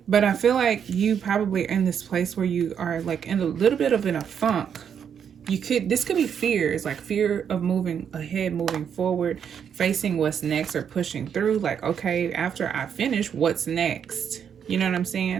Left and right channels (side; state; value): left; quieter; 7.9 dB